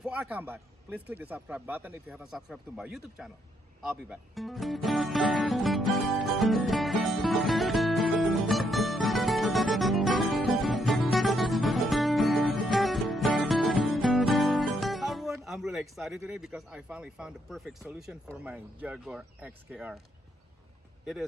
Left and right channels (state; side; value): normal; both; correlation 0.75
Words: I come back, please click the subscribe button if you haven't subscribed to my YouTube channel. I'll be back. Hi everyone, I'm really excited today because I finally found the perfect solution for my Jaguar XKR. It